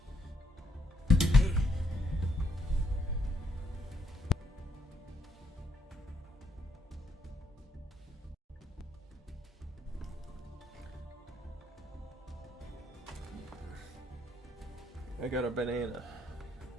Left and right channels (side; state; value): both; normal; correlation 0.74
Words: I got a banana.